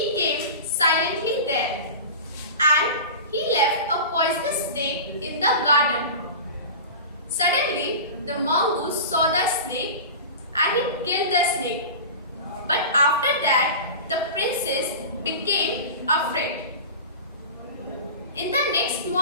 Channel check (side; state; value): both; inverted; correlation -0.31